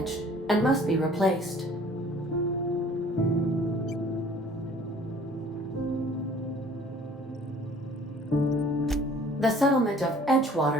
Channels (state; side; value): normal; both; correlation 0.53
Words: and must be replaced. The settlement of